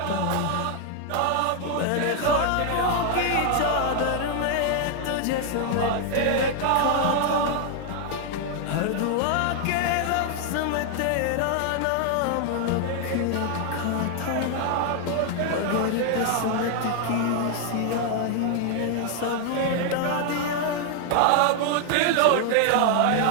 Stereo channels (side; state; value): both; different; correlation 0.00